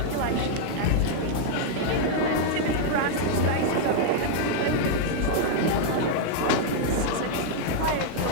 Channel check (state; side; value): different; both; correlation -0.01